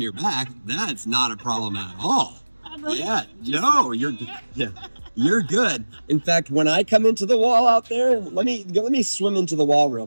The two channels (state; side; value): inverted; both; correlation -1.00